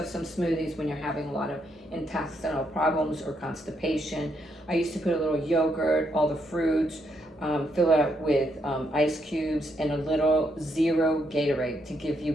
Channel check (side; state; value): both; normal; correlation 0.77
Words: some smoothies when you're having a lot of intestinal problems or constipation. I used to put a little yogurt, all the fruits, fill it up with ice cubes and a little zero Gatorade to give you